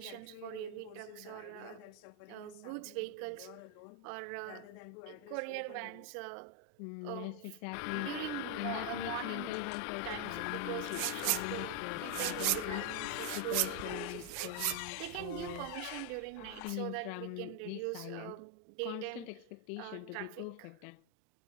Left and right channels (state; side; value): different; both; correlation 0.01